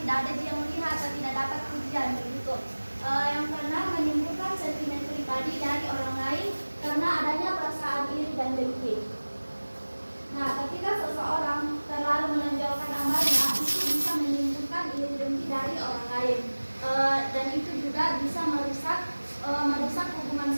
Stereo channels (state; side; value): inverted; both; correlation -1.00